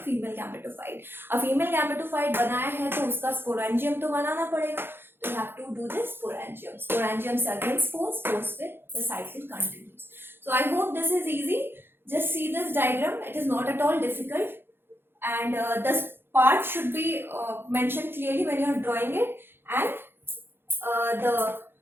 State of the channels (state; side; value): late; left; 0.10 ms